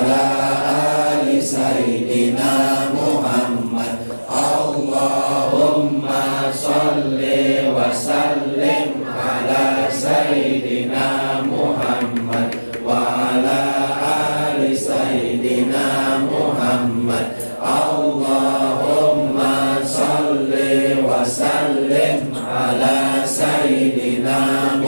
ali Sayyidina Muhammad. Allahumma sholli wa sallim ala Sayyidina Muhammad wa ala ali Sayyidina Muhammad. Allahumma sholli wa sallim ala Sayyidina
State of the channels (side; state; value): both; inverted; correlation -1.00